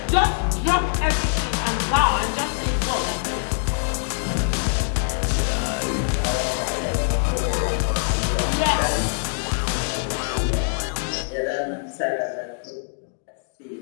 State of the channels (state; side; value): silent; right; digital silence